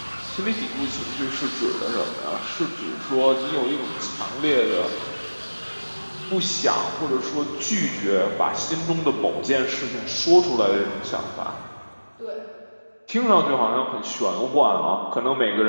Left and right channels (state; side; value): inverted; both; correlation -1.00